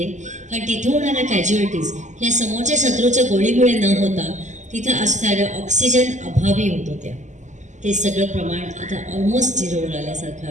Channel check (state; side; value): late; left; 0.34 ms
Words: कारण तिथं होणाऱ्या कॅज्युअलिटीज ह्या समोरच्या शत्रूच्या गोळीमुळे न होता तिथं असणाऱ्या ऑक्सिजन अभावी होत होत्या. ते सगळं प्रमाण आता ऑलमोस्ट झिरोवर